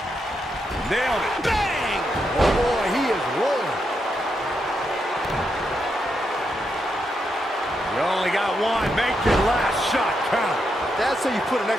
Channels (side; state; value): both; normal; correlation 0.82